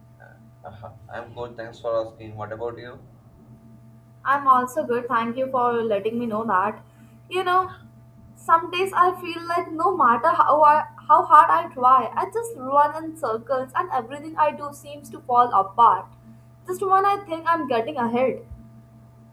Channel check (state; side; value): identical; both; correlation 1.00